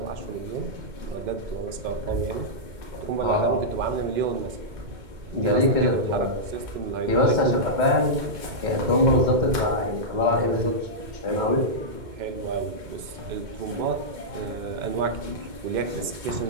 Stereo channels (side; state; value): left; late; 2.1 ms